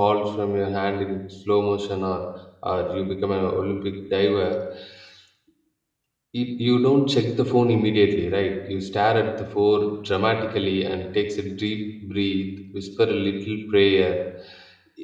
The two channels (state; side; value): identical; both; correlation 1.00